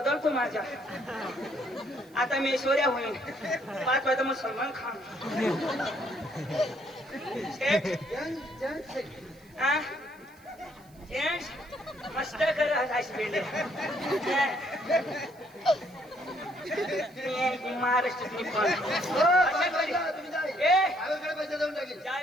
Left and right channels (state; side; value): noise; right; hiss, 29 dB below the sound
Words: माझ्या. आता मी ऐश्वर्या होईन. 5 वाजता मग सलमान खान. सेठ आ जेंट्स मस्त कर हॉस्पिटल. महाराष्ट्रातली पण अशा करी. ए गावाकडे पैसा देऊन टाकेल.